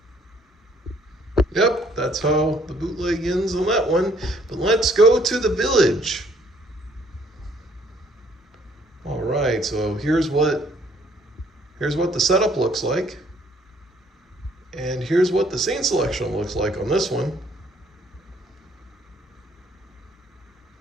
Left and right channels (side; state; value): both; normal; correlation 0.63